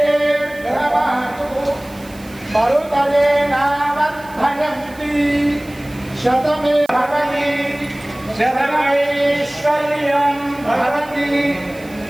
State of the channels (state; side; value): noise; right; hiss, 23 dB below the sound